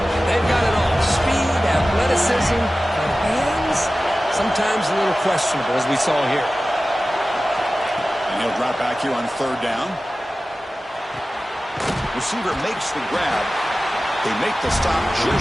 they've got it all. Speed, athleticism, but hands, sometimes a little questionable, as we saw here. And he'll drop back here on 3rd down. Receiver makes the grab. They make the stop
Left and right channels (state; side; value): normal; both; correlation 0.96